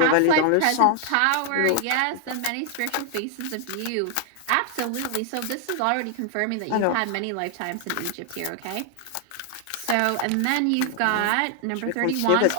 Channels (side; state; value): both; different; correlation 0.00